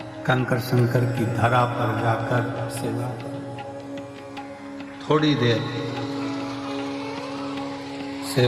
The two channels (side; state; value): both; identical; correlation 1.00